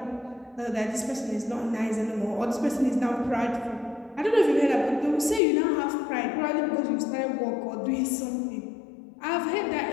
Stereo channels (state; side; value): drops out; right; at 5.4 s